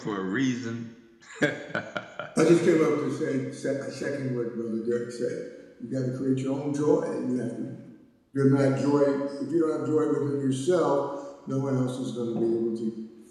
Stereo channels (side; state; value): both; identical; correlation 1.00